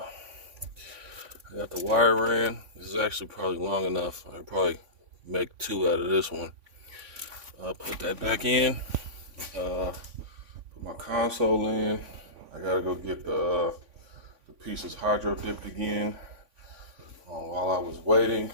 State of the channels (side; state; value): left; late; 3.5 ms